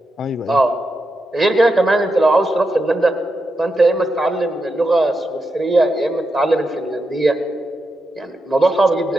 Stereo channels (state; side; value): normal; both; correlation 0.87